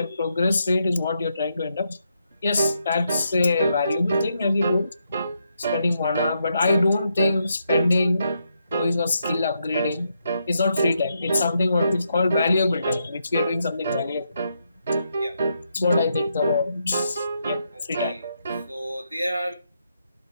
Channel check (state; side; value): inverted; both; correlation -0.81